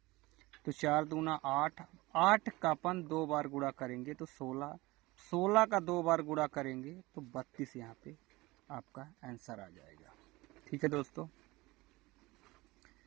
तो 4 दूना 8, 8 का अपन 2 बार गुणा करेंगे तो 16, 16 का 2 बार गुणा करेंगे तो 32 यहाँ पे आपका आंसर आ जाएगा। ठीक है दोस्तों,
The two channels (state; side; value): quieter; left; 21.1 dB